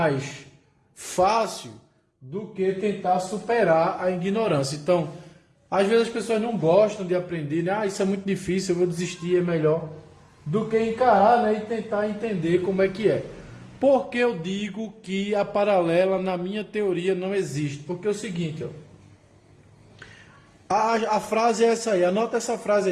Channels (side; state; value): both; identical; correlation 1.00